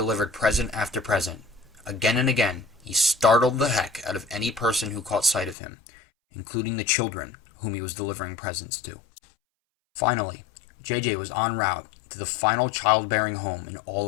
present after present. Again and again, he startled the heck out of any person who caught sight of him, including the children whom he was delivering presents to. Finally, JJ was en route to the final childbearing home in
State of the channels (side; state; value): right; drops out; at 5.6 s